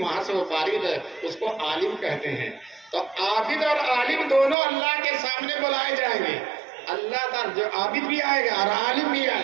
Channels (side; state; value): left; drops out; at 4.5 s